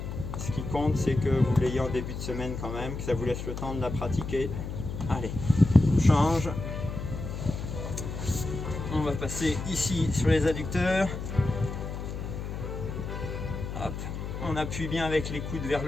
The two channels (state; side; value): noise; left; hum, 6 dB below the sound